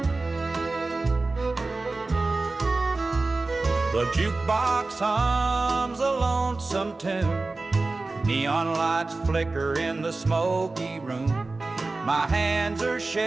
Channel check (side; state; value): left; quieter; 3.4 dB